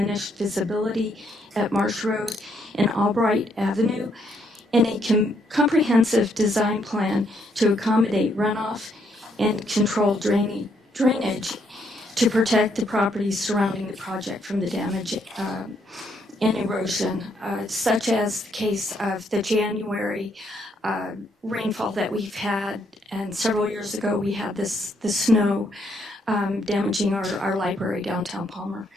visibility at Marsh Road and Albright Avenue. And a comprehensive design plan to accommodate runoff and control drainage to protect the properties surrounding the project from the damage and erosion, such as the case of the January rainfall that we've had, and several years ago we had the snow damaging our library downtown Palmer.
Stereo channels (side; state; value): both; normal; correlation 0.73